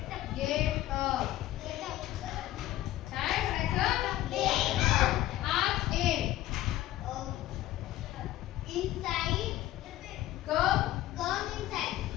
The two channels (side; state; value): right; quieter; 14.7 dB